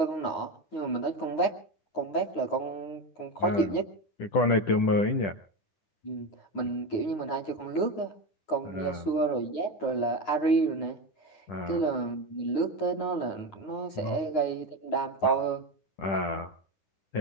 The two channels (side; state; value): right; late; 9.4 ms